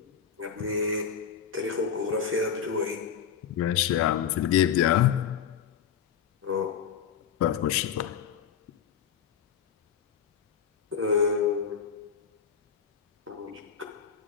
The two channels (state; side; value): quieter; right; 7.7 dB